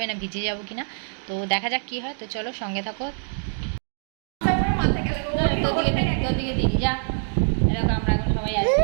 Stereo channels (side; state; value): left; silent; digital silence